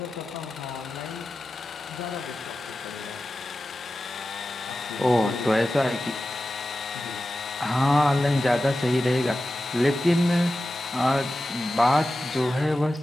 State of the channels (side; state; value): both; normal; correlation 0.93